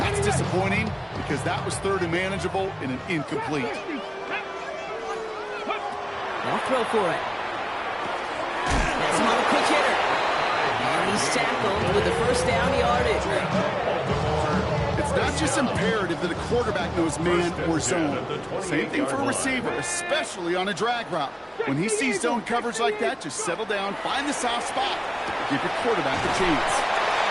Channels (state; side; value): identical; both; correlation 1.00